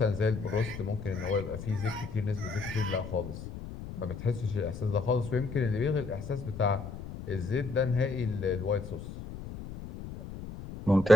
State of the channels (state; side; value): noise; left; rumble, 11 dB below the sound